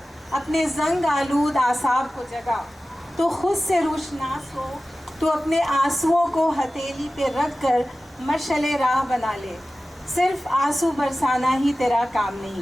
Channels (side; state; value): both; normal; correlation 0.96